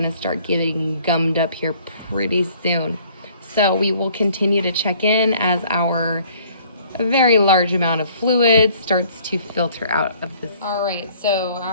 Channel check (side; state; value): both; inverted; correlation -0.57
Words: start getting gummed up here pretty soon. So we will continue to check in as our very large amount of fluid starts to filter out of this. All right, so